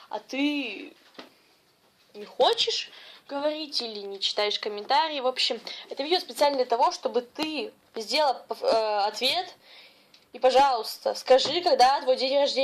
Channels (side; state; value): both; identical; correlation 1.00